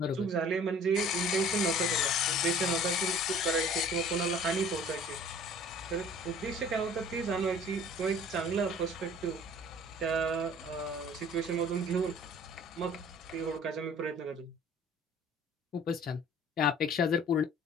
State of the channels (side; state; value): both; normal; correlation 0.50